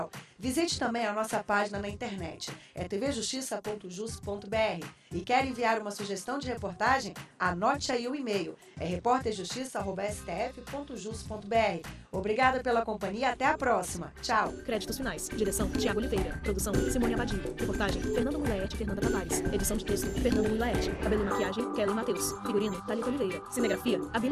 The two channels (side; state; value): both; identical; correlation 1.00